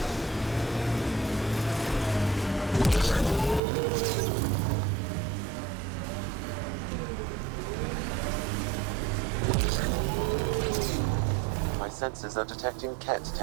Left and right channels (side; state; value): left; drops out; at 3.6 s